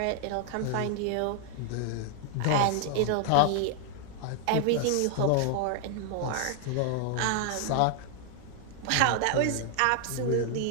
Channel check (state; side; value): different; both; correlation 0.00